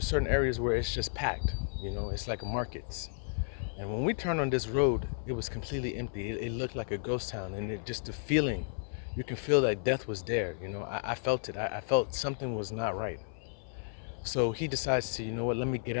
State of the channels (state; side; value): silent; right; 55 dB below the other